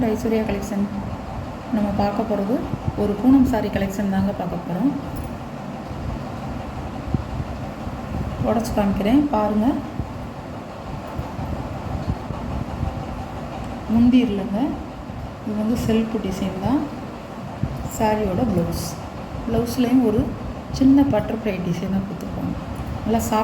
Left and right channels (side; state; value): both; identical; correlation 1.00